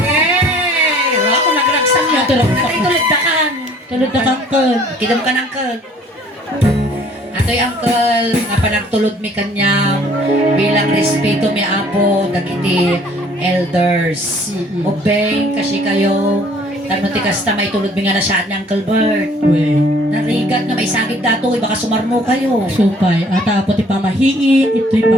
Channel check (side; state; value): both; normal; correlation 0.56